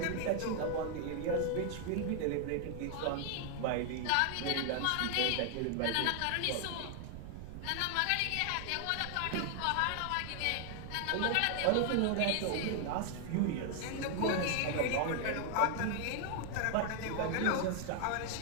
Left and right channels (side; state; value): both; different; correlation 0.00